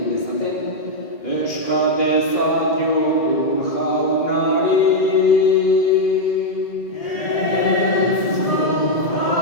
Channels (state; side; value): late; right; 2.0 ms